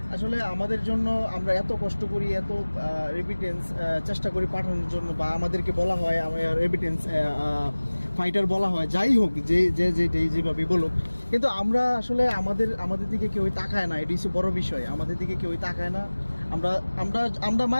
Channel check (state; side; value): inverted; both; correlation -1.00